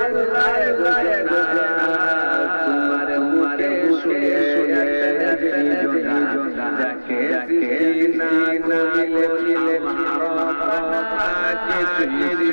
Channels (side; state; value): both; inverted; correlation -1.00